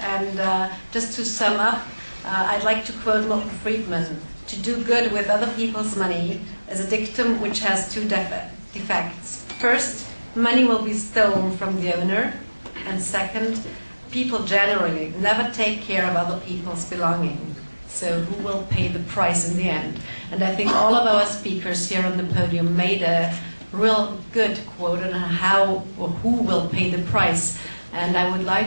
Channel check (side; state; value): both; inverted; correlation -1.00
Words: And just to sum up, I'd like to quote Milton Friedman: "To do good with other people's money is a dictum which has two defects. First, money will be stolen from the owner. And second, people generally never take care of other people's belongings. So who will pay the price in the end?" And I think all of our speakers here on the podium made a real good quote on how or who will pay the price. And I would